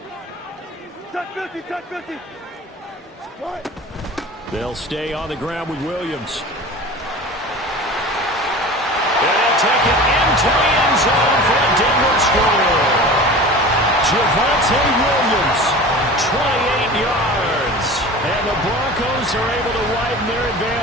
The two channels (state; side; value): normal; both; correlation 0.37